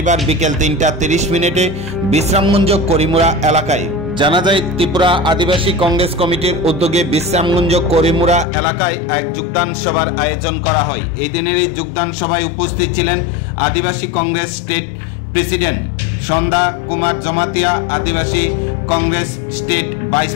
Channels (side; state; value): right; drops out; at 8.5 s